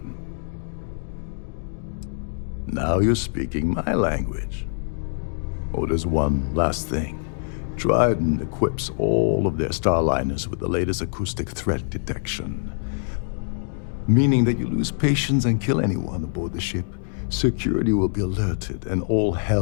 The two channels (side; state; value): right; silent; digital silence